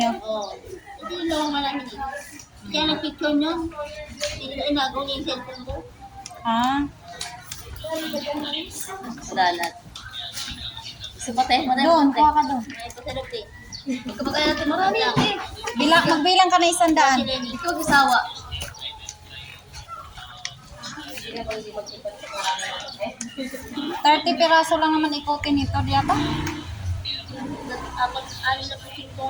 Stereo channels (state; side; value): identical; both; correlation 1.00